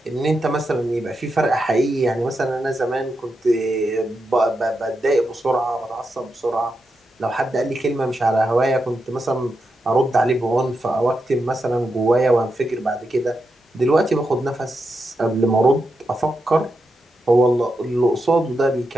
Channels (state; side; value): normal; both; correlation 0.86